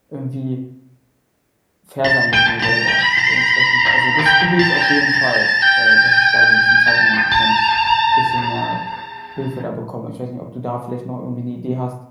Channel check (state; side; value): identical; both; correlation 1.00